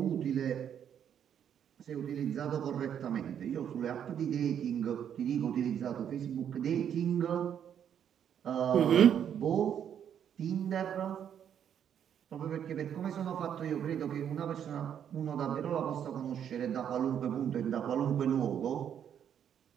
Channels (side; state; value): left; quieter; 9.0 dB